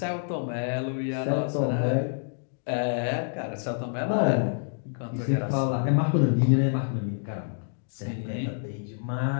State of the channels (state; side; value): silent; right; digital silence